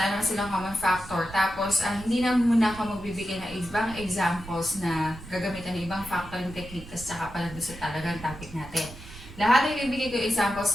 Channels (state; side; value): noise; right; rumble, 15 dB below the sound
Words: naman silang common factor. Tapos, hindi na muna ako magbibigay ng ibang examples na gagamitan ng ibang factoring technique kasi saka pala doon sa talagang topic natin. Lahat ng ibibigay ko